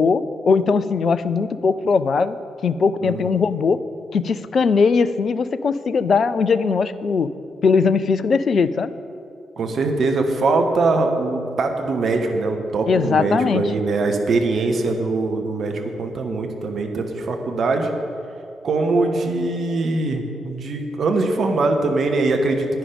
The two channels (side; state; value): both; normal; correlation 0.78